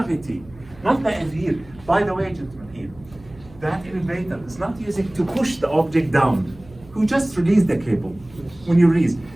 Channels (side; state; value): right; noise; hum, 22 dB below the sound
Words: Not the here. By the way, gentlemen, here, that elevator is not using to push the object down. You just release the cable when you release.